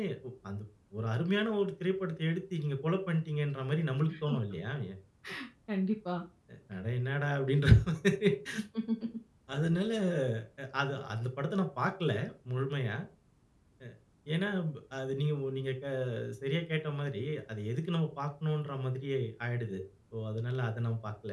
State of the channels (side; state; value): both; identical; correlation 1.00